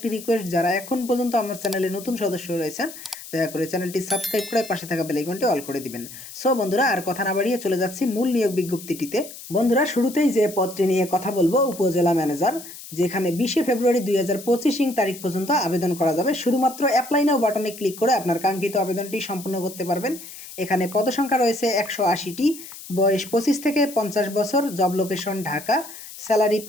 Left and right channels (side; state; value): left; noise; hiss, 14 dB below the sound